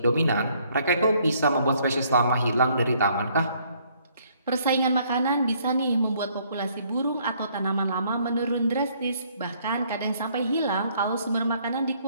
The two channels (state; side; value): inverted; both; correlation -0.65